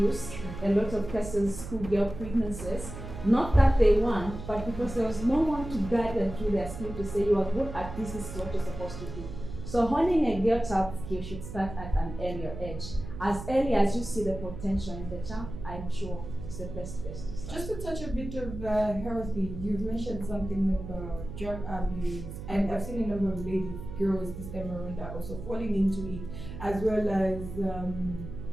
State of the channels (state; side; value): noise; right; hum, 10 dB below the sound